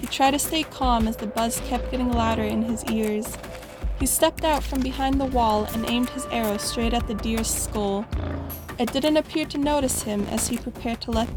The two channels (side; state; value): both; identical; correlation 1.00